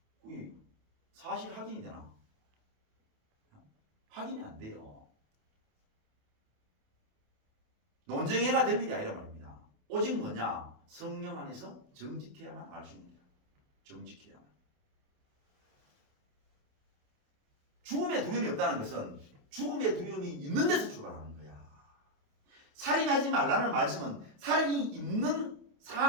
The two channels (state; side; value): late; left; 28 ms